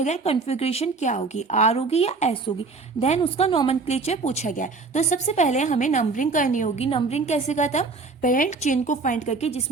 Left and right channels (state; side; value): quieter; left; 4.1 dB